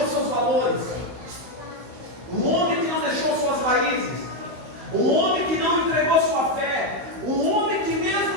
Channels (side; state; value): left; late; 16 ms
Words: seus valores, um homem que não deixou suas raízes, um homem que não entregou sua fé, um homem que